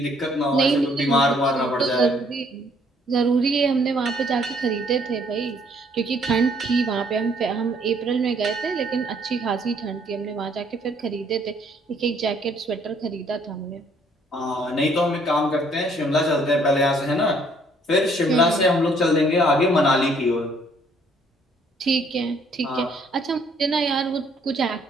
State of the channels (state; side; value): normal; both; correlation 0.64